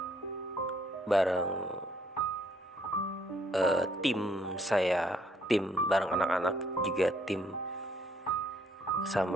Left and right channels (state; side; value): normal; both; correlation 0.67